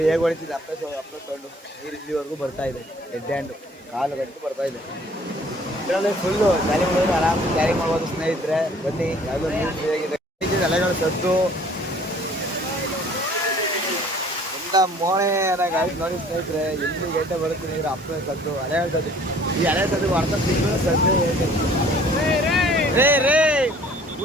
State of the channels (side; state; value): both; normal; correlation 0.54